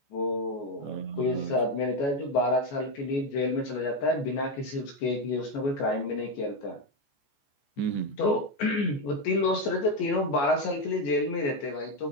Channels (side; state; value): right; late; 14 ms